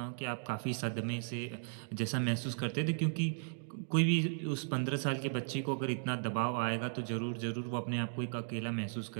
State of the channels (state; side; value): silent; left; digital silence